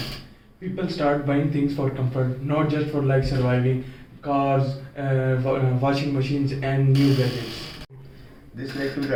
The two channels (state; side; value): identical; both; correlation 1.00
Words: People start buying things for comfort, not just for like surviving, cars, washing machines, and new gadgets. This led to the